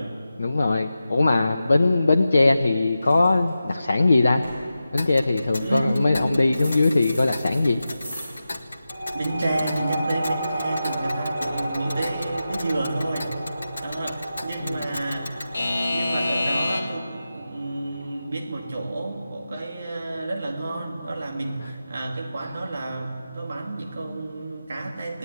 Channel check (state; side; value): inverted; both; correlation -0.92